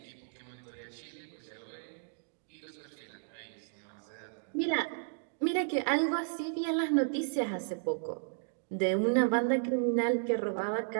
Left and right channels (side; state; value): left; silent; digital silence